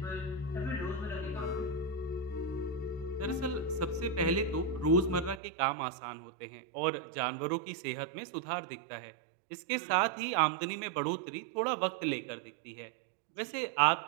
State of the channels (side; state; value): left; drops out; at 5.4 s